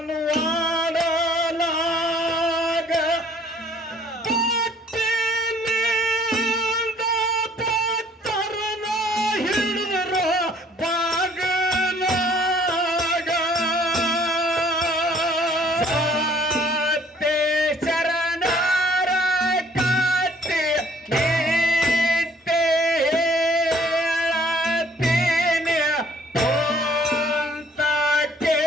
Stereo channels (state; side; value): normal; both; correlation 0.59